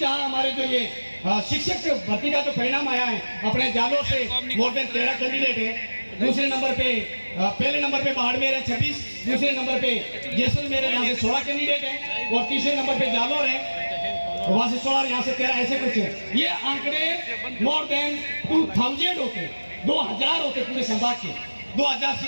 हमारे जो ये शिक्षक भर्ती का जो परिणाम आया है, अपने जालोर से मोर देन 13 कैंडिडेट है। दूसरे नंबर पे पहले नंबर पे बाड़मेर है 26, दूसरे नंबर पे जैसलमेर है, यहाँ से 16 कैंडिडेट है, और तीसरे नंबर पे जालोर है, वहां से 16, यहाँ से 13, ऐसे कुछ है। ये आंकड़े मोर देन 2000 होते, 2000 होते पूरे संभाग के, 2000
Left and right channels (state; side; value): inverted; both; correlation -1.00